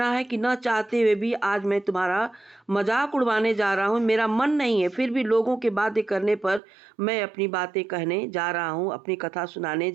है कि न चाहते हुए भी आज मैं तुम्हारा मजाक उड़वाने जा रहा हूँ। मेरा मन नहीं है, फिर भी लोगों के बातें करने पर मैं अपनी बातें कहने जा रहा हूँ, अपनी कथा सुनाने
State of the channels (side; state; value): left; drops out; at 6.6 s